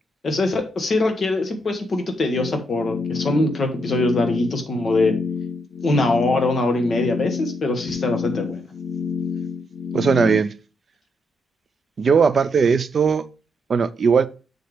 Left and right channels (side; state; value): both; normal; correlation 0.78